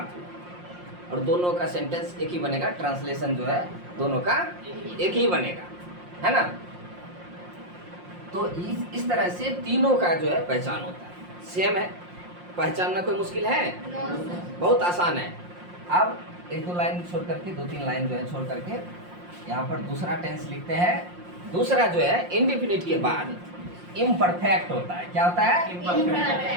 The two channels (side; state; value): left; late; 5.6 ms